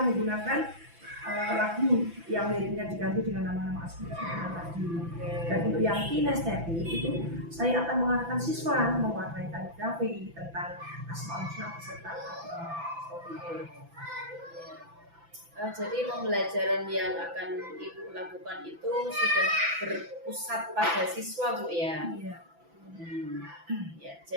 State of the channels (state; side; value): late; left; 6.0 ms